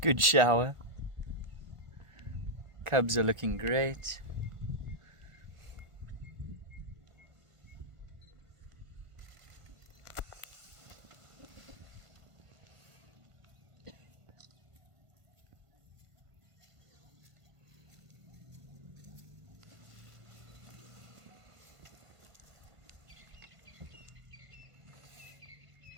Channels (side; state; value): left; late; 1.5 ms